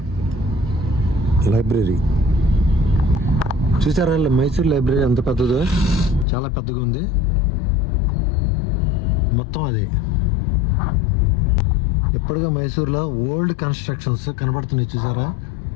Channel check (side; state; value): right; drops out; at 6.2 s